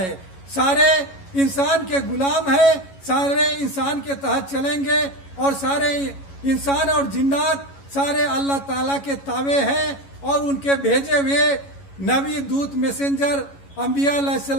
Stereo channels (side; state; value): right; late; 11 ms